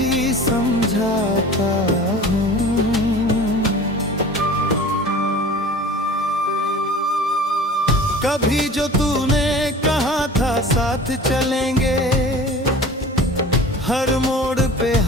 समझाता हूँ। कभी जो तूने कहा था साथ चलेंगे, हर मोड़ पे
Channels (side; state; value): both; normal; correlation 0.41